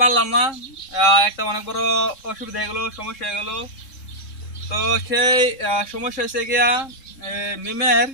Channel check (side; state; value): right; late; 3.7 ms